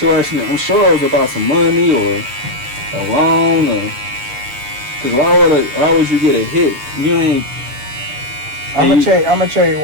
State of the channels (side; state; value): left; late; 7.1 ms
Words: I'm sure it was about some money or a loan, or because why would you get a hit? You ain't. I'm gonna tell you